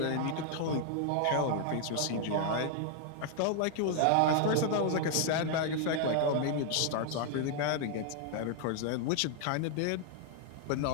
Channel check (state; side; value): different; both; correlation 0.00